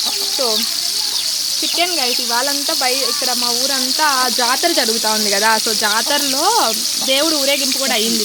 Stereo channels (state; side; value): identical; both; correlation 1.00